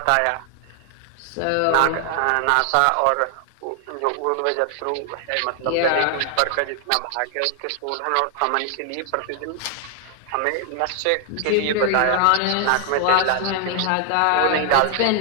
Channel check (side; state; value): both; different; correlation 0.00